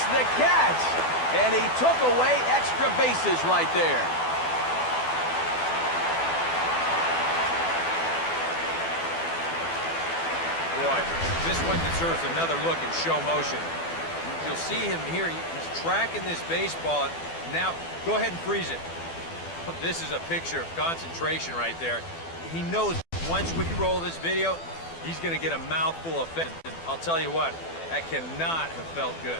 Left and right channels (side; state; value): right; late; 12 ms